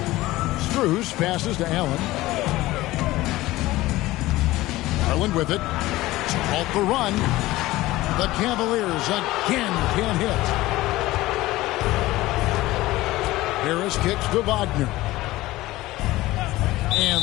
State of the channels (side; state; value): right; quieter; 17.9 dB